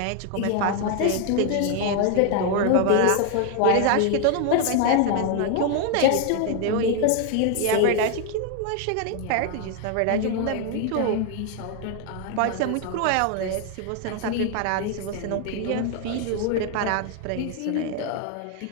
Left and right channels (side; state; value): both; different; correlation 0.01